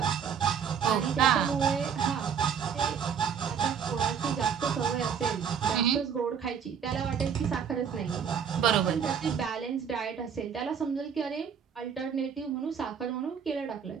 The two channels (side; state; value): left; quieter; 7.4 dB